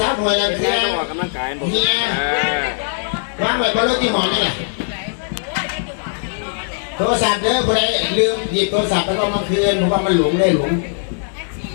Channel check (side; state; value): right; silent; digital silence